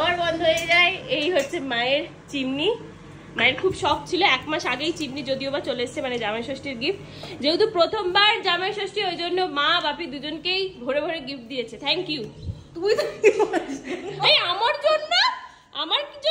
বন্ধ হয়ে যায়। এই হচ্ছে মায়ের চিমনি। মায়ের খুব শখ ছিল, 1 মাস আগেই চিমনি যদিও বা চলে এসছে, মানে জামাই ষষ্ঠীর গিফট। যেহেতু প্রথমবার জামাই ষষ্ঠী, ওই জন্য মা বাপি দুজনকেই ভরে ভরে গিফট দিয়েছে। Thank you. তুই তো এই আমার জন্য, আমার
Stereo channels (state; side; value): identical; both; correlation 1.00